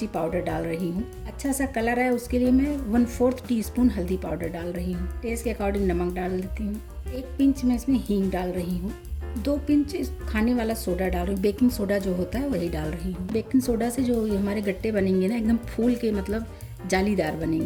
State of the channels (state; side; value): identical; both; correlation 1.00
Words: पाउडर डाल रही हूँ। अच्छा सा कलर है उसके लिए मैं 1/4 टीस्पून हल्दी पाउडर डाल रही हूँ। टेस्ट के अकॉर्डिंग नमक डाल देती हूँ। 1 पिंच में इसमें हींग डाल रही हूँ। 2 पिंच खाने वाला सोडा डाल रही हूँ। बेकिंग सोडा जो होता है वही डाल रही हूँ। बेकिंग सोडा से जो हमारे गट्टे बनेंगे ना, एकदम फूल के मतलब जालीदार